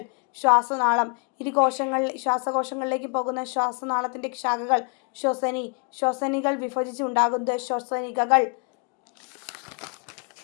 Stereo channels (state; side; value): quieter; right; 36.9 dB